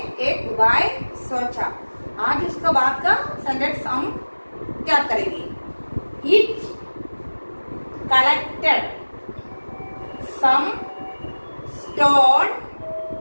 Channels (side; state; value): both; inverted; correlation -1.00